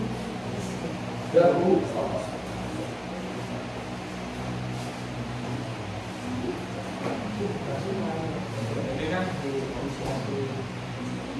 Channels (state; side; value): identical; both; correlation 1.00